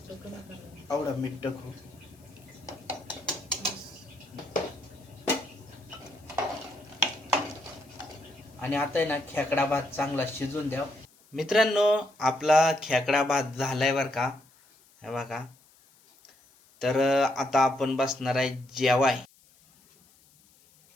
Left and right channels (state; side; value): noise; left; hiss, 30 dB below the sound